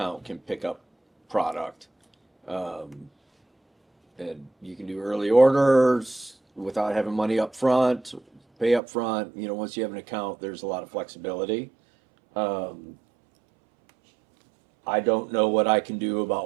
can pick up product. And you can do early orders without having money up front, pay up front. You know, once you have an account, there's a lot of flexibility. I don't know what I can do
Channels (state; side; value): drops out; left; at 8.8 s